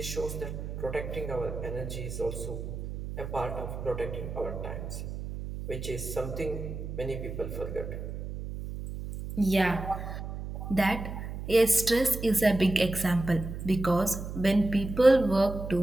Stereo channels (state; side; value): noise; right; hum, 7 dB below the sound